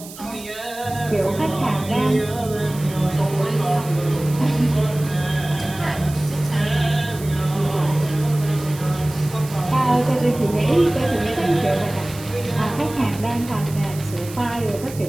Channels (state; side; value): noise; right; hiss, 16 dB below the sound